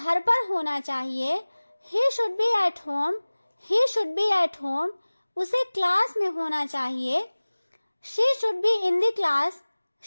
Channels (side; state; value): both; inverted; correlation -1.00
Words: पर होना चाहिए। He should be at home. He should be at home. उसे क्लास में होना चाहिए। She should be in the class.